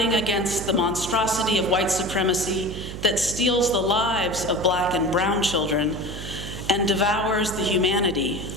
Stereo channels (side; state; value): right; noise; hum, 9 dB below the sound